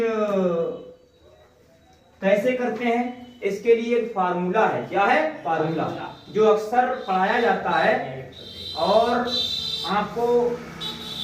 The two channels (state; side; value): identical; both; correlation 1.00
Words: कैसे करते हैं? इसके लिए एक फार्मूला है। क्या है? फार्मूला, जो अक्सर पढ़ाया जाता है और आपको